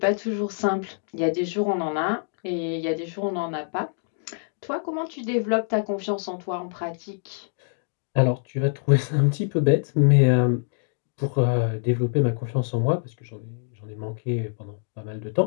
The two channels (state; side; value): silent; right; digital silence